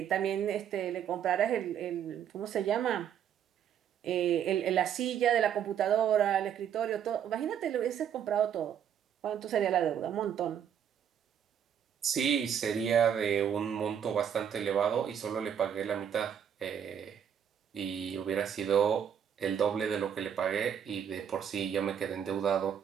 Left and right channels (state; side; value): quieter; left; 8.7 dB